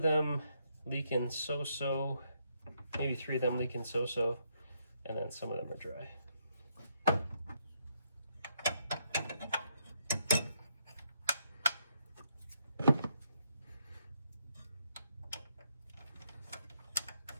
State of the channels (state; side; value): inverted; both; correlation -0.76